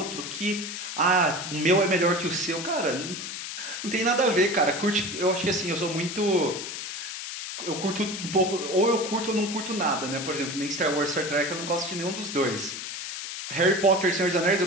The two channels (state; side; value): noise; left; hiss, 7 dB below the sound